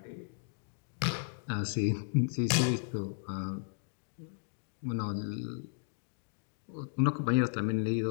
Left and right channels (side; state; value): right; silent; digital silence